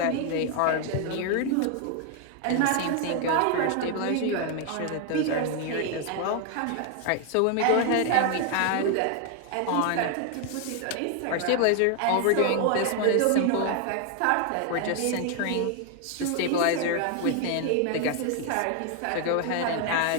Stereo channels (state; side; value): different; both; correlation 0.00